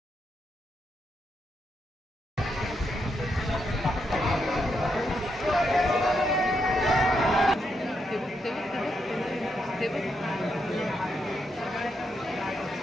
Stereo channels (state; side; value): normal; both; correlation 0.81